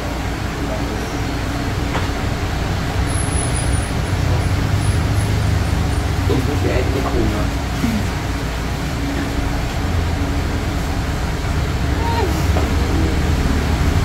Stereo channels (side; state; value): both; identical; correlation 1.00